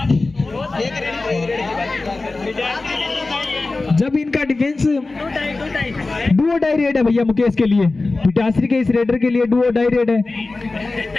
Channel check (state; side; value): quieter; right; 3.4 dB